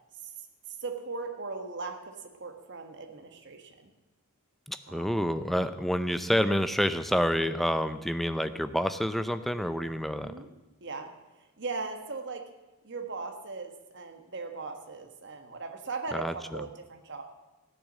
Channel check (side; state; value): both; normal; correlation 0.76